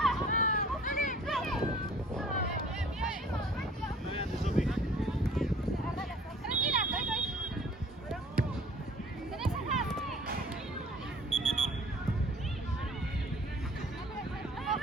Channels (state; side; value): normal; both; correlation 0.51